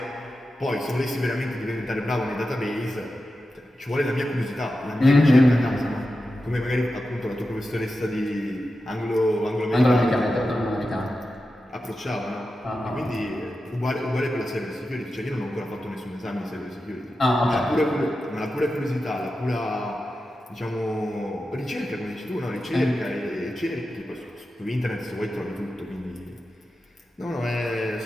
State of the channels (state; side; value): normal; both; correlation 0.91